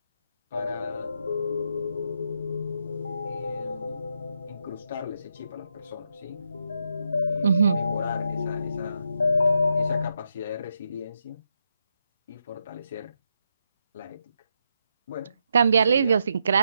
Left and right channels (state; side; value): inverted; both; correlation -0.82